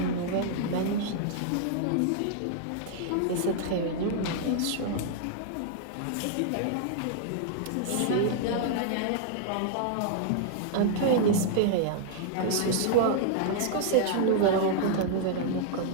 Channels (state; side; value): different; both; correlation -0.01